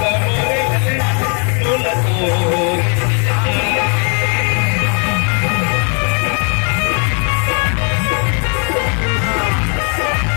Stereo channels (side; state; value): right; quieter; 39.6 dB